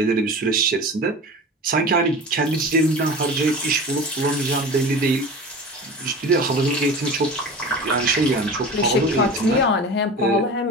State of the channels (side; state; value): both; normal; correlation 0.34